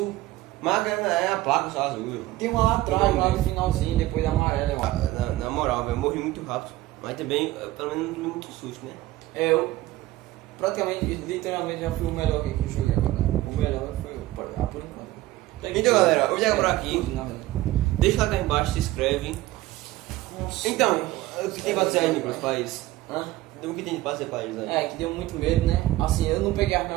Mas é a placa só azul. Tem uma lá atrás, lá no finalzinho, depois da amarela, eu acho. Na moral, velho, eu morri muito rápido. Mas também, pelo menos, não tomei muito susto, né? É, eu praticamente, literalmente já fui o melhor que eu joguei agora. O melhor foi por enquanto. Então, galera, eu vou chegar por aqui. Tudo, na verdade. Deixa lá cá embaixo, se inscreve. Nossa. Então, o que tem pra dizer aí, Nicolas, pra isso? Hã? O que tem pra dizer pra eles aí? É, que deu muito medo, né? Assim, eu não peguei as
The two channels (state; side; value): quieter; left; 16.8 dB